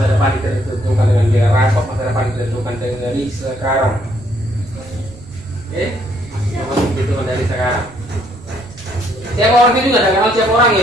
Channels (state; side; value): noise; right; rumble, 22 dB below the sound